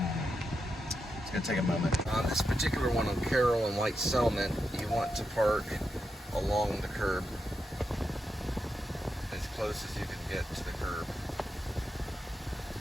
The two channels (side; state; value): both; normal; correlation 0.86